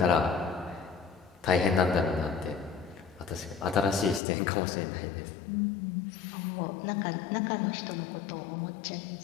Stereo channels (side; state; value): right; drops out; at 4.2 s